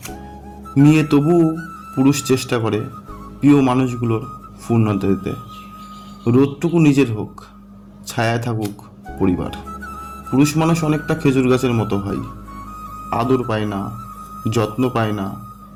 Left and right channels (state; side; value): identical; both; correlation 1.00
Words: নিয়ে তবুও পুরুষ চেষ্টা করে প্রিয় মানুষগুলোর পূর্ণতা দিতে। রোদটুকু নিজের হোক, ছায়ায় থাকুক পরিবার। পুরুষ মানুষ অনেকটা খেজুর গাছের মতো হয়, আদর পায় না, যত্ন পায় না,